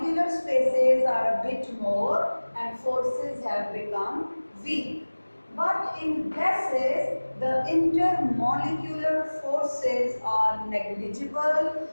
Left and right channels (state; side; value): inverted; both; correlation -1.00